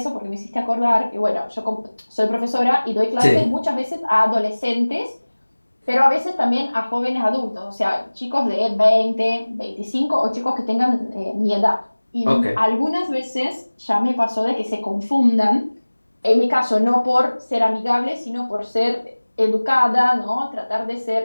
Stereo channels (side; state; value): both; inverted; correlation -1.00